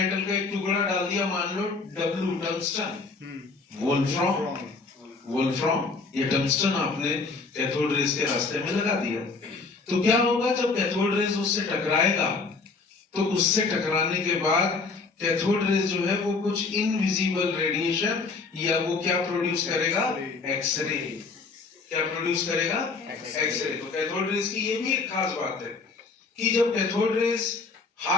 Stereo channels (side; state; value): right; quieter; 4.3 dB